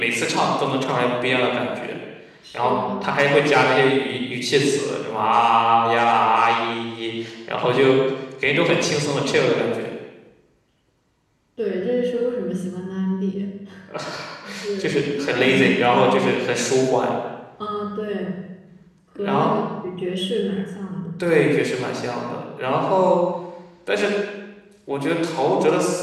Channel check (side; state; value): both; identical; correlation 1.00